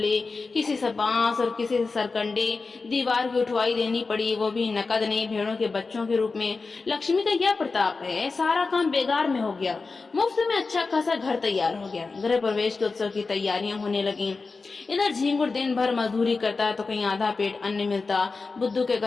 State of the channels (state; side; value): quieter; right; 4.2 dB